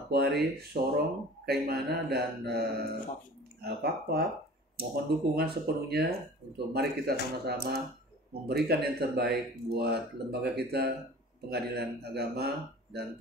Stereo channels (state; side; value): normal; both; correlation 0.43